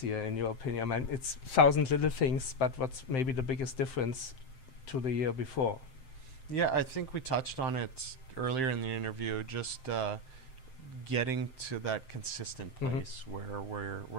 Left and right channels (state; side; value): late; right; 7.7 ms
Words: year, in your opinion? I mean, it's 1,000 little things, but what's maybe the biggest difference to the year before? Yeah, I think we touched on it earlier in the interview, just getting to that consistent place where